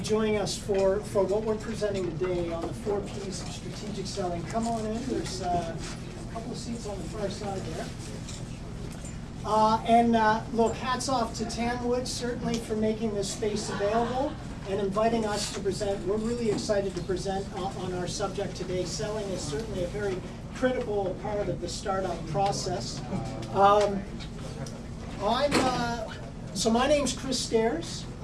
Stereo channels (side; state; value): both; identical; correlation 1.00